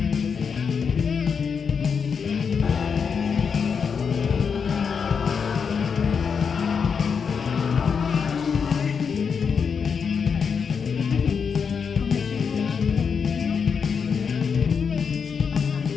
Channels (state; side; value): quieter; right; 6.2 dB